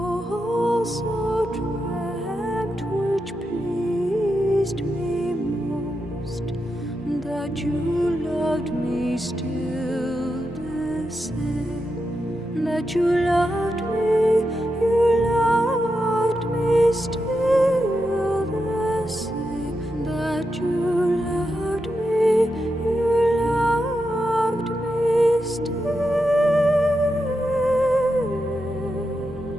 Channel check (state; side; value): normal; both; correlation 0.87